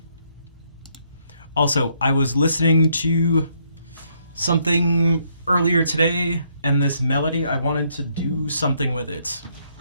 Also, I was listening to something earlier today, and this melody, I wanted to do something with it.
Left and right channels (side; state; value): both; inverted; correlation -0.71